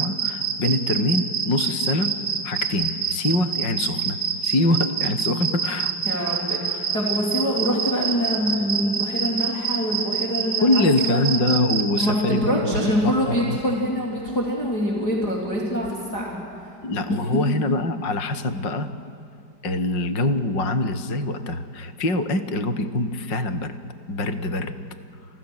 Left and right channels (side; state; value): right; late; 5.0 ms